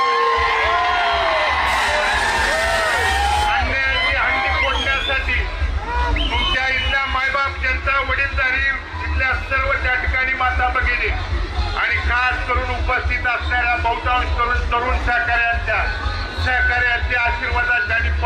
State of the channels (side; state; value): both; identical; correlation 1.00